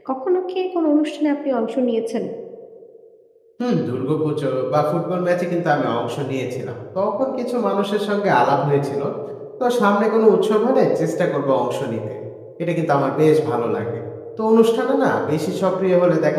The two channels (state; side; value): identical; both; correlation 1.00